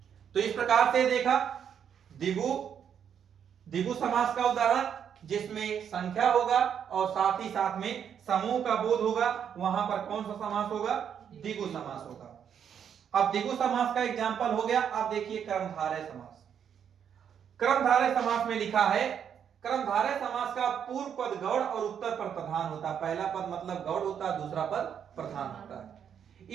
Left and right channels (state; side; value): quieter; left; 8.3 dB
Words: तो इस प्रकार से देखा द्विगु समास का उदाहरण, जिसमें संख्या होगा और साथ ही साथ में समूह का बोध होगा, वहां पर कौन सा समास होगा, द्विगु समास होगा। अब द्विगु समास का एग्जाम्पल हो गया। अब देखिए कर्मधारय समास। कर्मधारय समास में लिखा है, कर्मधारय समास का पूर्व पद गौड़ और उत्तर पर प्रधान होता है। पहला पद मतलब गौड़ होता है, दूसरा पद प्रधान होता है।